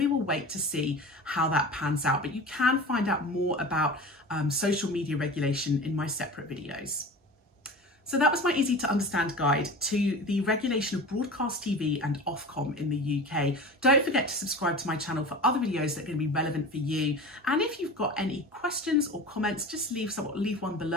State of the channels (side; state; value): both; normal; correlation 0.34